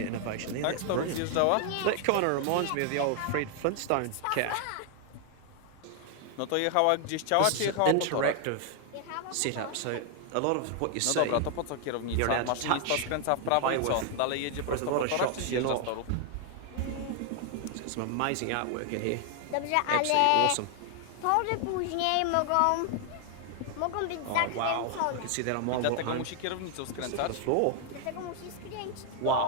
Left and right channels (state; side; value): different; both; correlation 0.00